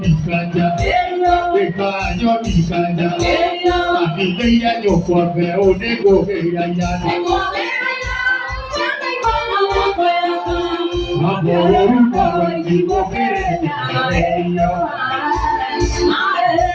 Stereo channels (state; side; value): identical; both; correlation 1.00